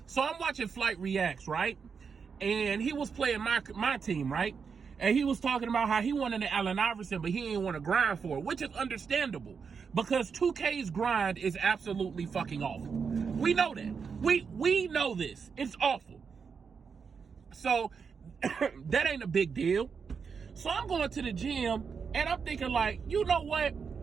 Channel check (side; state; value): left; quieter; 5.9 dB